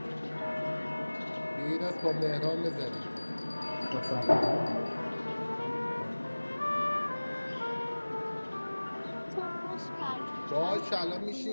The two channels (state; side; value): inverted; both; correlation -1.00